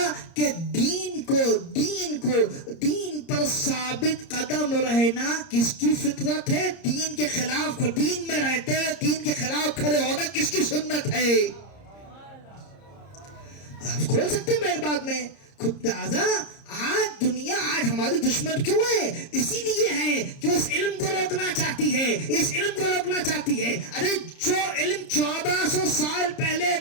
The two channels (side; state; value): right; late; 30 ms